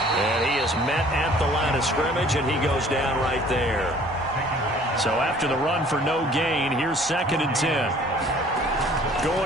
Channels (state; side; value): normal; both; correlation 0.53